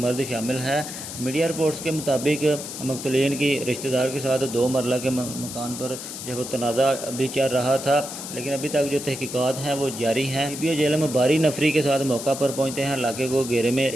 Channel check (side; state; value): left; noise; hiss, 9 dB below the sound